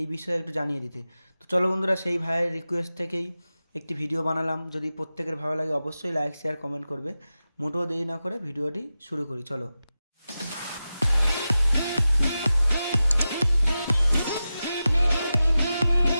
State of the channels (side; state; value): both; inverted; correlation -0.93